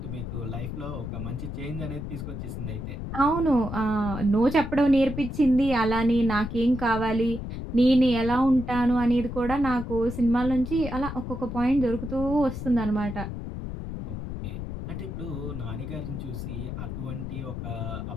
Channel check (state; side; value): noise; left; rumble, 6 dB below the sound